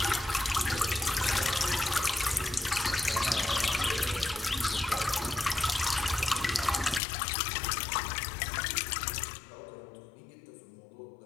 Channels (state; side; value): drops out; right; at 7.0 s